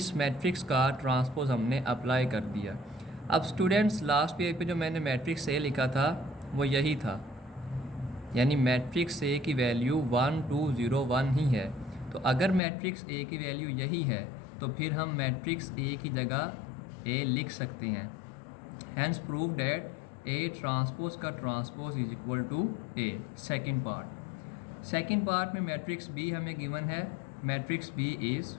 matrix का transpose हमने apply कर दिया. अब students last page पे जो मैंने मैट्रिक्स A लिखा था वो यही था, यानी मैट्रिक्स A की वैल्यू 1, 2, 0, 1 ही है. तो अगर मैट्रिक्स A की वैल्यू यही है तो फिर हम मैट्रिक्स A की जगह A लिख सकते हैं. Hence prove that A transpose का transpose is equal to A. Second part में मैट्रिक्स B हमें गिवन है. Matrix B is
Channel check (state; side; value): drops out; right; at 12.6 s